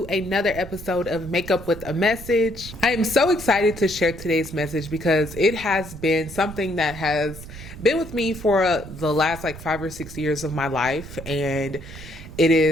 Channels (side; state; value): right; noise; rumble, 14 dB below the sound